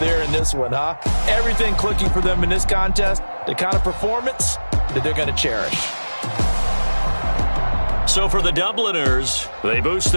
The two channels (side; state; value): both; inverted; correlation -1.00